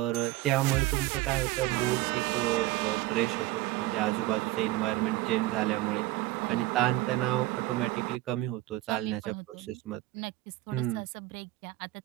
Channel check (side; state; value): left; quieter; 17.1 dB